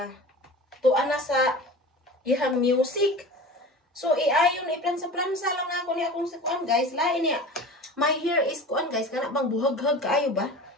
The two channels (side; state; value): both; normal; correlation 0.36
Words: tuan na sa ihang music. So, iayon iplansa-plansa lang na ako ni akong kuan guys. Lain niya. My hair is kuan guys, kana bang buhag-hag kaayo ba?